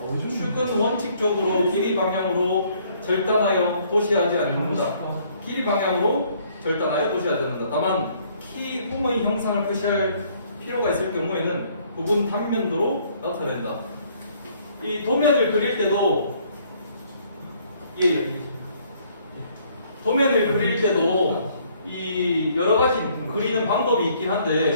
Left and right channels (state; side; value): inverted; both; correlation -0.63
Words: 축은 원칙적으로 길이 방향으로 절단하여 도시하지 않는다. 길이 방향으로 절단하여 도시하지 않는다. 다만 키 홈의 형상을 표시할 필요가 있을 경우에는 부분 단면도로 나타낸다. 이 도면을 그릴 때도 도면을 그릴 때도 이 여러 가지 그리는 방법이 있긴